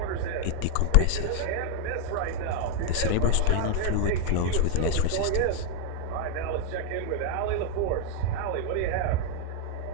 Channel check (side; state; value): both; different; correlation 0.00